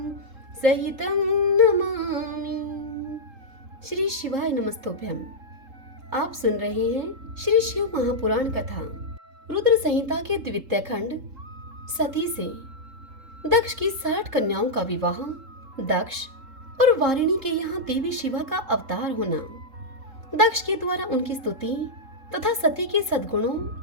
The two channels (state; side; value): late; left; 3.8 ms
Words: श्री शिवाय नमस्तोभ्यम। आप सुन रहे हैं श्री शिव महापुराण कथा रुद्र संहिता के द्वितीय खंड सती से दक्ष की 60 कन्याओं का विवाह, दक्ष और वारिणी के यहाँ देवी शिवा का अवतार होना, दक्ष के द्वारा उनकी स्तुति तथा सती के सद्गुणों